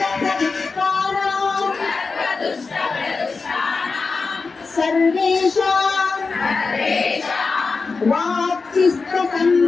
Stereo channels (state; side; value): quieter; right; 4.4 dB